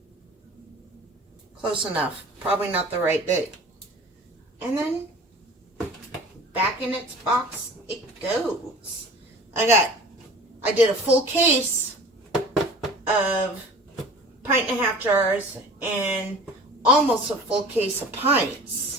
Close enough. Probably not the right big. And then back in its box it goes. I did a full case of 1.5 jars and almost a full case of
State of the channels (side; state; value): both; normal; correlation 0.42